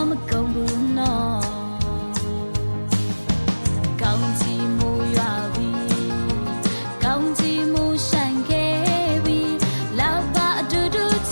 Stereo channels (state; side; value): inverted; both; correlation -1.00